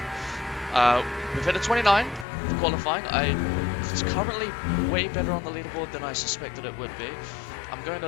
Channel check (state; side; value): drops out; right; at 2.2 s